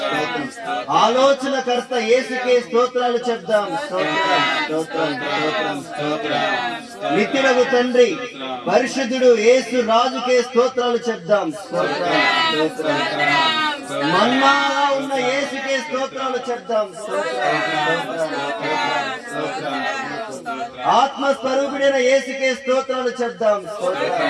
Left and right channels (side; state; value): both; identical; correlation 1.00